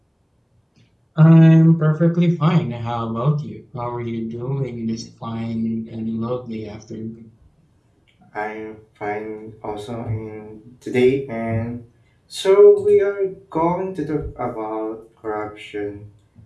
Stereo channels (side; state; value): both; identical; correlation 1.00